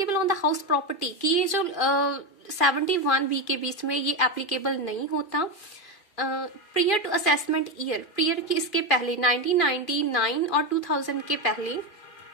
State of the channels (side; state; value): right; late; 2.4 ms